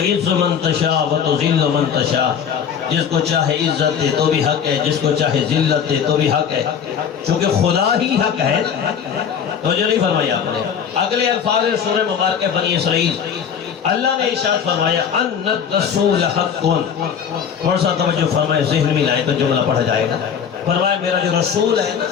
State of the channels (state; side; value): quieter; right; 7.6 dB